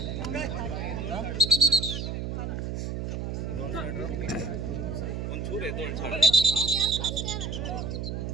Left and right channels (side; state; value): right; noise; hum, 3 dB below the sound